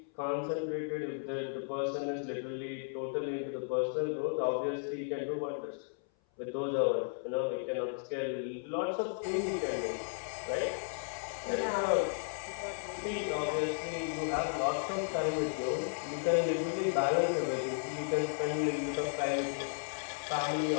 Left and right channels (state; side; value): silent; right; 55 dB below the other